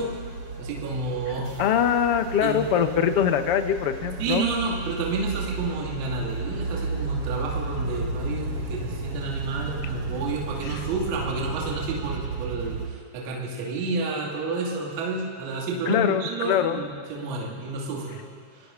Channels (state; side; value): late; left; 7.3 ms